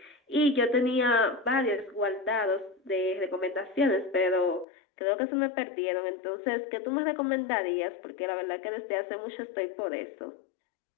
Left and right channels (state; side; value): drops out; right; at 4.7 s